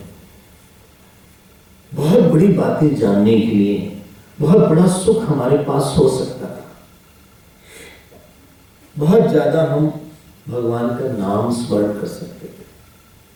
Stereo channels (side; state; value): both; identical; correlation 1.00